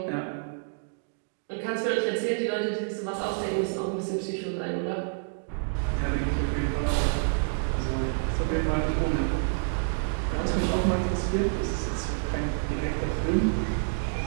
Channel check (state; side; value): silent; left; digital silence